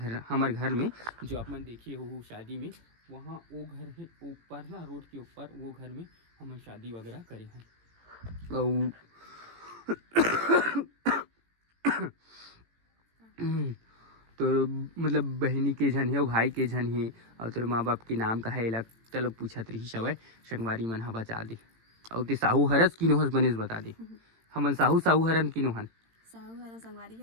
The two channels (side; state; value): left; late; 18 ms